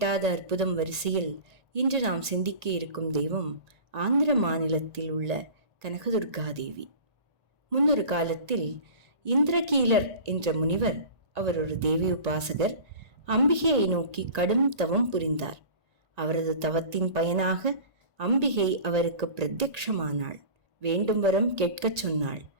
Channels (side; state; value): left; late; 1.8 ms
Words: அற்புதம் வரிசையில் இன்று நாம் சிந்திக்க இருக்கும் தெய்வம் ஆந்திர மாநிலத்தில் உள்ள கனகதுர்கா தேவி. முன்னொரு காலத்தில் இந்திரகீலர் என்ற முனிவர், அவர் ஒரு தேவி உபாசகர், அம்பிகையை நோக்கி கடும் தவம் புரிந்தார். அவரது தவத்தின் பயனாக அம்பிகை அவருக்கு பிரத்யக்ஷமானாள். வேண்டும் வரம் கேட்கச் சொன்னாள்.